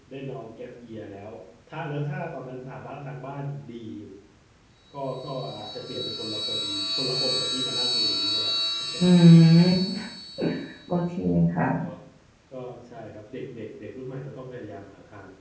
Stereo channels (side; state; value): both; identical; correlation 1.00